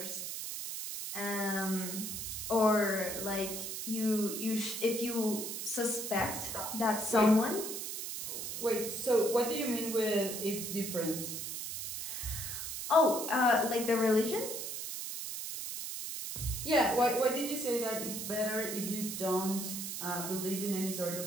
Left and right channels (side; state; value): right; noise; hiss, 5 dB below the sound